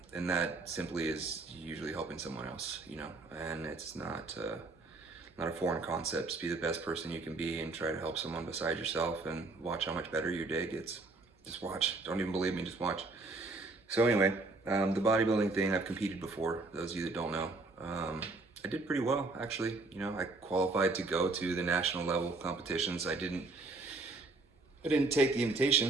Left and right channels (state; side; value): quieter; left; 3.4 dB